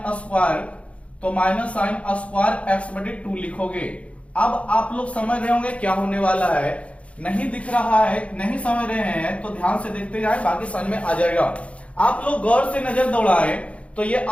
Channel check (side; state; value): right; late; 0.063 ms